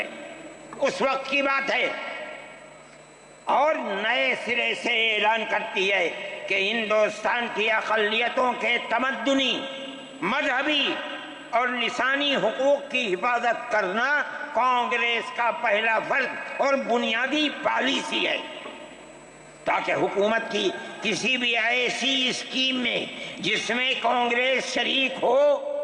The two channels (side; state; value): both; identical; correlation 1.00